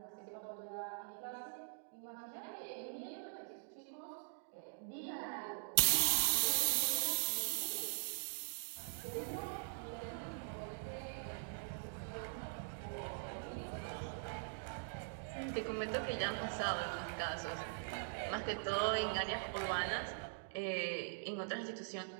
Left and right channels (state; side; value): silent; left; digital silence